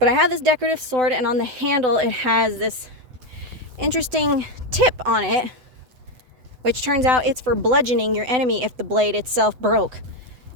I have this decorative sword, and on the handle it has this interesting tip on it, which turns out it's for bludgeoning your enemy if the blade itself broke.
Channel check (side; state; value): left; late; 7.9 ms